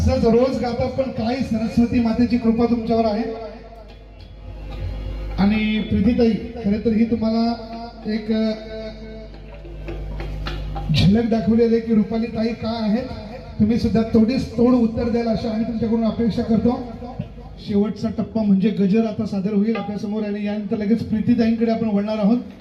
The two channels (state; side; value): identical; both; correlation 1.00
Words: रोज गाता. पण काय सरस्वती मातेची कृपा तुमच्यावर आहे. आणि प्रीतीताई खरं तर ही तुम्हाला एक झलक दाखवलेली आहे की रुपाली ताई काय आहेत. तुम्ही सुद्धा तोड उत्तर द्याल अशी आम्ही तुमच्याकडून अपेक्षा करतो. शेवटचा टप्पा म्हणजे गजर आता सादर होईल आपल्या समोर आणि यानंतर लगेच प्रीतीताईंकडे आपण वळणार आहोत.